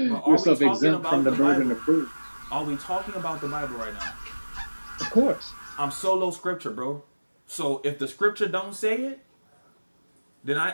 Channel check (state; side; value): inverted; both; correlation -1.00